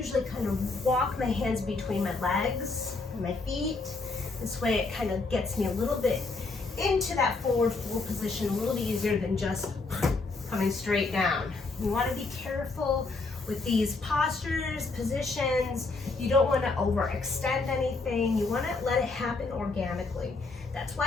kind of walk my hands between my legs and my feet. This way it kind of gets me a little bit into that forward fold position, a little easier than just coming straight down. You want to be careful with these postures, positions. You don't want to overextend anything. You want to let it happen organically. That's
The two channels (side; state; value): right; quieter; 3.7 dB